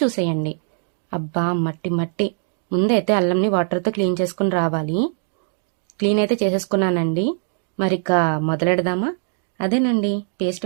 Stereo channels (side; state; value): left; silent; 65 dB below the other